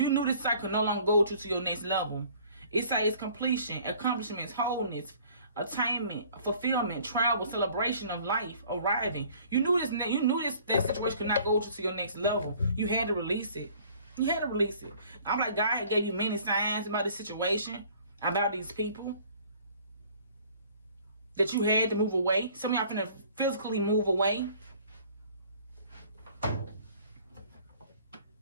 knew this cycle no longer go to your next level. It says completion, accomplishments, wholeness, attainment, fulfillment, travel, celebration of life, arriving. You knew that situation could not go to your next level. You had to release it. You had to release it. I'm like, God had gave you many signs about this situation, about these people, that you had to move away. Some of y'all finna physically move away.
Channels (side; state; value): both; inverted; correlation -0.54